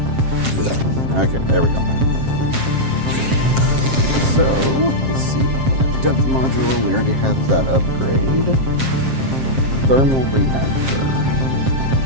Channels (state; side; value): late; left; 7.6 ms